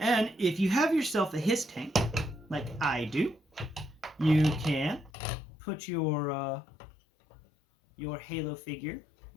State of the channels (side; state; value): right; drops out; at 5.1 s